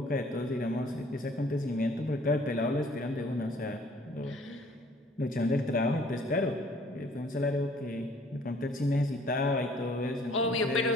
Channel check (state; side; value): normal; both; correlation 0.57